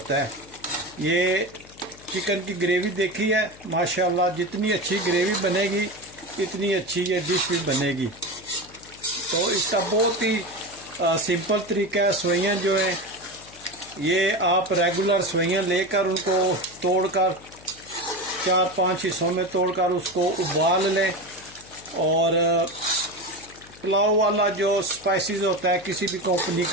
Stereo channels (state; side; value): noise; left; hum, 22 dB below the sound